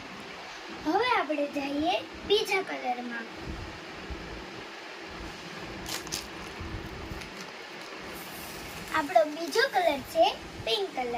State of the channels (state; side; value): identical; both; correlation 1.00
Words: હવે આપણે જઈએ બીજા કલરમાં. આપણો બીજો કલર છે પિંક